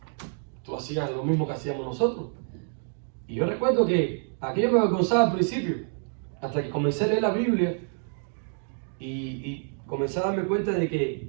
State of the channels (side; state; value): left; silent; 55 dB below the other